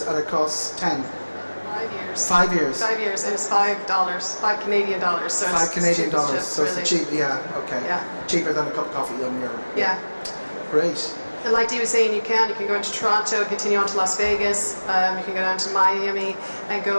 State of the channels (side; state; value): both; inverted; correlation -1.00